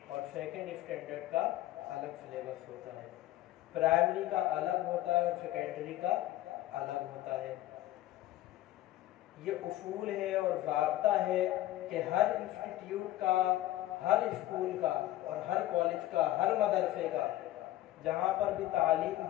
اور سیکنڈ اسٹینڈرڈ کا الگ سلیبس ہوتا ہے، پرائمری کا الگ ہوتا ہے اور سیکنڈری کا الگ ہوتا ہے۔ یہ اصول ہے اور ضابطہ ہے کہ ہر انسٹیٹیوٹ کا، ہر اسکول کا اور ہر کالج کا، ہر مدرسے کا جہاں پر بھی تعلیم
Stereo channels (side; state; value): right; quieter; 15.1 dB